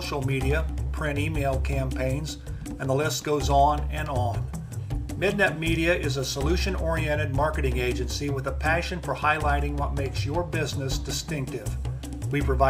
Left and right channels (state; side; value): identical; both; correlation 1.00